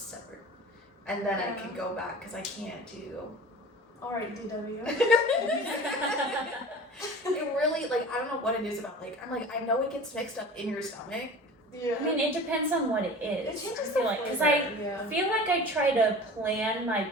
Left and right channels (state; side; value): normal; both; correlation 0.39